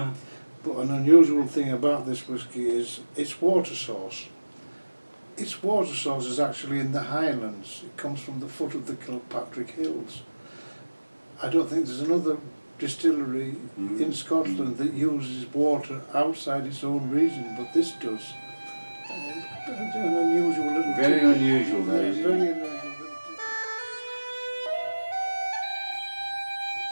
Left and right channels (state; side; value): inverted; both; correlation -1.00